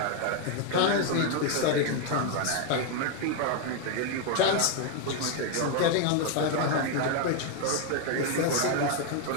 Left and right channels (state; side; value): different; both; correlation 0.01